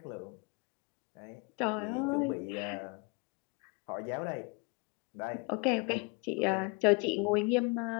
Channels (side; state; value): right; quieter; 28.8 dB